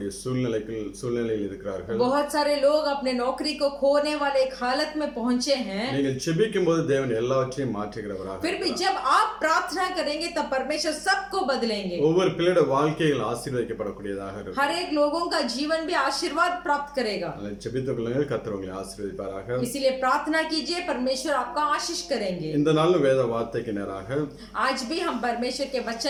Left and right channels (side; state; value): both; identical; correlation 1.00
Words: சூழ்நிலையில் இருக்கிறார்கள்। बहुत सारे लोग अपने नौकरी को खोने वाले एक हालत में पहुंचे हैं। நீங்கள் ஜெபிக்கும்போது தேவன் எல்லாவற்றையும் மாற்றுகிறவராக। फिर भी जब आप प्रार्थना करेंगे तब परमेश्वर सबको बदलेंगे। ஒவ்வொரு பிள்ளையோட வாழ்க்கைகள் ஆசீர்வதிக்கப்படக்கூடியதாக இருக்கும்। हर एक लोगों का जीवन भी आशीर्वाद प्राप्त करेगा। ஜெபித்துக் கொள்ளுங்கள், கர்த்தர் உங்களை ஆசீர்வதிப்பாராக। इसीलिए प्रार्थना कीजिए, परमेश्वर आपका आशीष करेंगे। இந்த நாள் வேத வார்த்தைக்கு நேராக आज भी हम परमेश्वर के